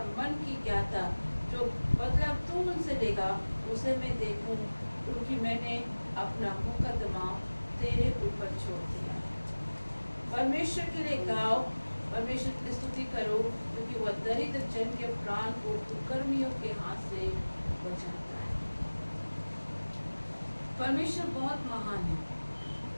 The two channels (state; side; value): inverted; both; correlation -1.00